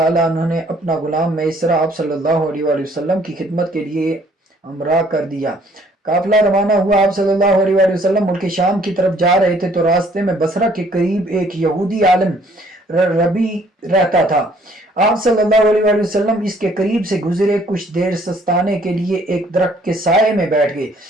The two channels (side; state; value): both; normal; correlation 0.61